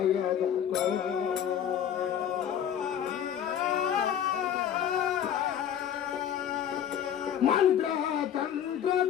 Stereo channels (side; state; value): right; quieter; 9.4 dB